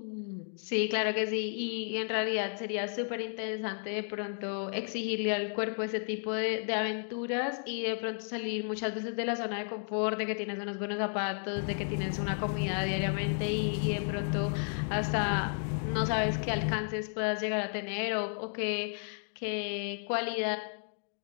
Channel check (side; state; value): right; silent; 56 dB below the other